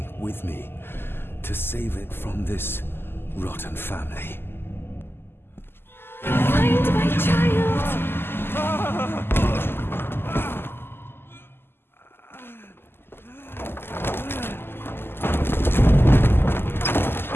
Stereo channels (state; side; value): late; right; 0.11 ms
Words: with me to save it from this rotten family. Find my child!